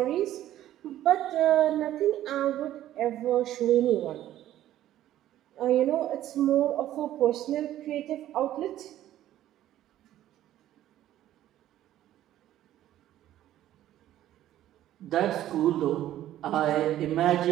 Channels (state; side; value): quieter; left; 13.0 dB